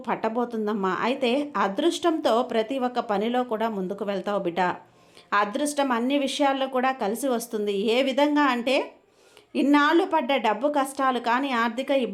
పట్టబోతుందమ్మా. అయితే అదృష్టంతో ప్రతి ఒక్క పనిలో కూడా ముందుకు వెళ్తావు బిడ్డ. అదృష్టం అన్ని విషయాల్లో కూడా కలిసి వస్తుంది. ఏ విధంగా అంటే ఇన్నాళ్ళు పడ్డ డబ్బు కష్టాలు కానీ, ఆర్థిక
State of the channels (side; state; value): both; identical; correlation 1.00